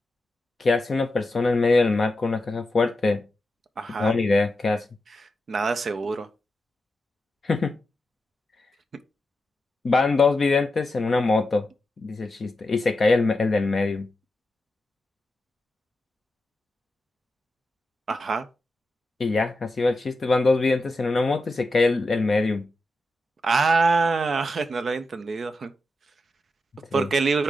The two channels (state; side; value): normal; both; correlation 0.88